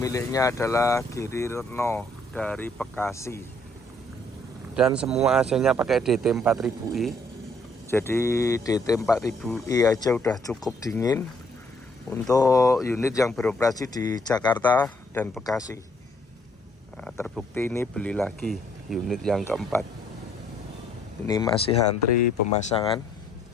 adalah Giri Retno dari Bekasi. Dan semua AC-nya pakai DT 4000i. Jadi DT 4000i aja udah cukup dingin untuk unit yang beroperasi di Jakarta dan Bekasi. Nah, terbukti ini beli lagi unit yang keempat. Ini masih antri pemasangan.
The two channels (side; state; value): both; normal; correlation 0.66